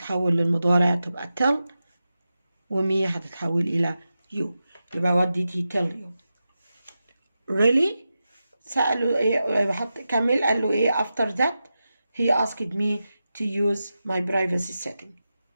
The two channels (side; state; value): both; inverted; correlation -0.91